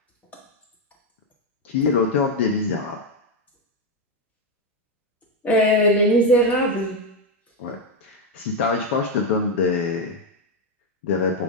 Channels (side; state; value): both; normal; correlation 0.06